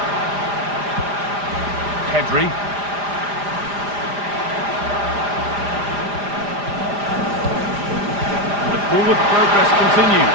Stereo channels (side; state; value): left; late; 4.9 ms